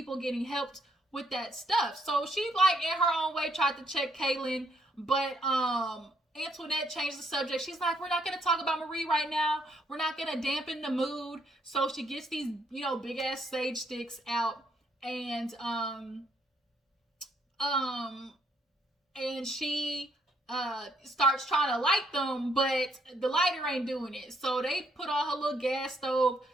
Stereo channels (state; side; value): normal; both; correlation 0.71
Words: getting helped with that stuff. So she like in her own way tried to check Kaylon, but Antoinette changed the subject. She's like, we're not going to talk about Marie right now. We're not going to dampen the mood. So she gets these, big ass sage sticks out, and she starts trying to light them, but the lighter ain't doing it. So they put on her little gas stove